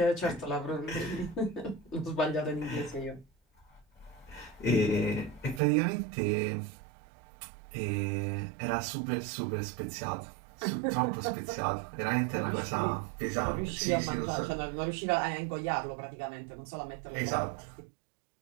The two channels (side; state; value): left; drops out; at 5.6 s